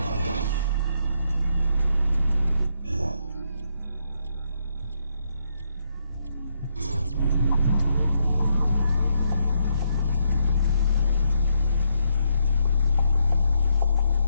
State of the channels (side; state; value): both; inverted; correlation -0.77